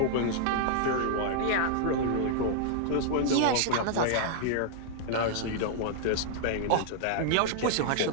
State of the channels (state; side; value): different; both; correlation -0.01